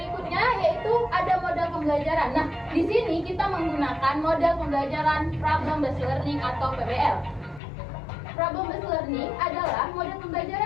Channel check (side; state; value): right; drops out; at 7.6 s